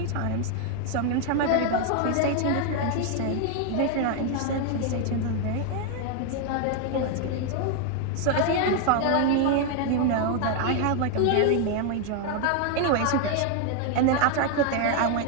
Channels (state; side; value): different; both; correlation 0.01